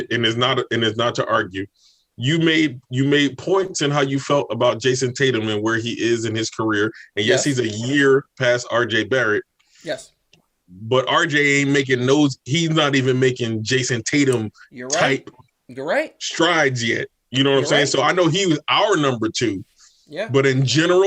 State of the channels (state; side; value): identical; both; correlation 1.00